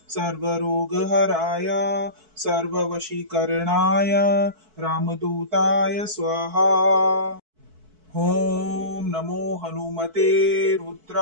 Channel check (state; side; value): late; left; 4.6 ms